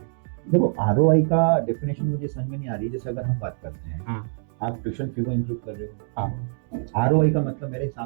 देखो, आरओआई का डेफिनेशन मुझे समझ में नहीं आ रही। जैसे अगर हम बात करते हैं, आप ट्यूशन फीस इंक्लूड कर रहे हो, आरओआई का मतलब मेरे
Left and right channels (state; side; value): silent; left; 59 dB below the other